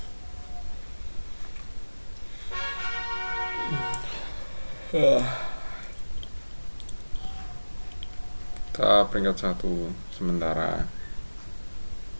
Kita peringkat 1 sementara.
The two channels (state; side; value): inverted; both; correlation -1.00